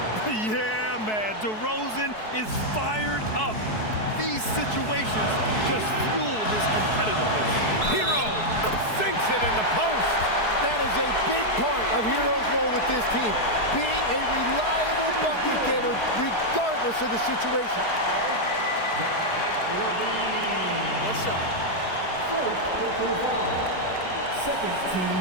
Yeah, man, DeRozan is fired up. These situations just the post. That is a big part of Hero's role with this team, being a reliable bucket getter regardless of the situation. One shot. Second team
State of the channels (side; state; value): right; late; 4.7 ms